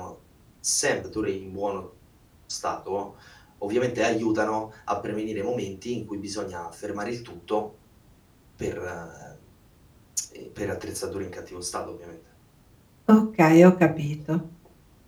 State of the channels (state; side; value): identical; both; correlation 1.00